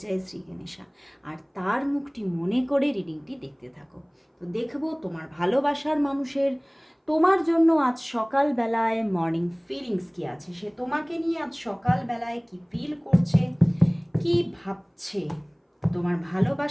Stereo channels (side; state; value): both; identical; correlation 1.00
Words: জয় শ্রী গণেশা, আর তার মুখটি মনে করে রিডিংটি দেখতে থাকো। তো দেখবো তোমার ভালোবাসার মানুষের তোমার জন্য আজ সকালবেলায় মর্নিং ফিলিংস কী আছে, সে তোমাকে নিয়ে আজ সকালবেলায় কি ফিল করছে, কি ভাবছে। তোমার